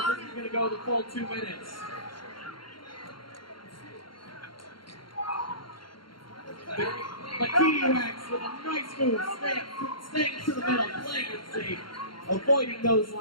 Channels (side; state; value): right; late; 0.73 ms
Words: this is going to go the full 2 minutes. But Kiwiwax with a nice move, staying to the middle, playing it safe, avoiding those